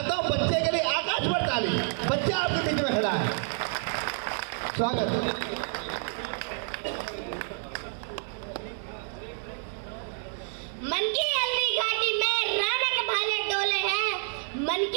हूँ बच्चे के लिए आकाश पर ताली। बच्चा आपके बीच में खड़ा है, स्वागत। मन की हल्दी घाटी में राणा के भाले डोले हैं, मन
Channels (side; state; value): left; silent; 57 dB below the other